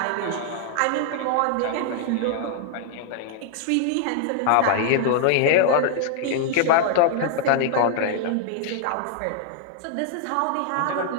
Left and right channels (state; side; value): different; both; correlation -0.01